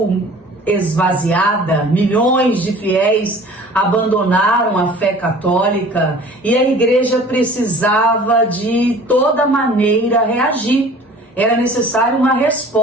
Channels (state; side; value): normal; both; correlation 0.46